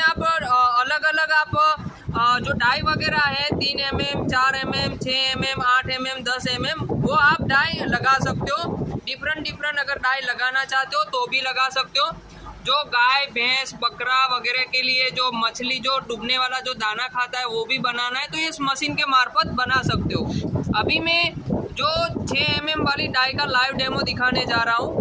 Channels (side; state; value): both; identical; correlation 1.00